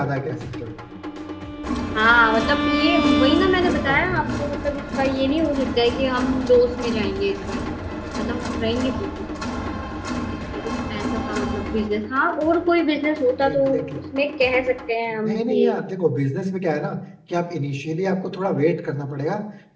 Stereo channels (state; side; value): identical; both; correlation 1.00